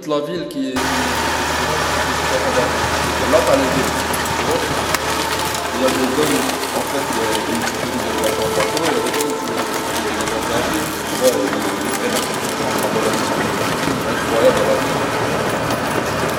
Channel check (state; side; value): identical; both; correlation 1.00